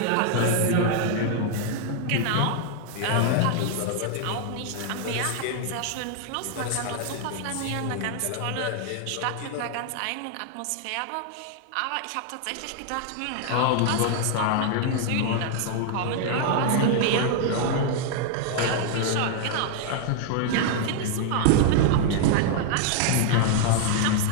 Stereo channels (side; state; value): both; different; correlation 0.00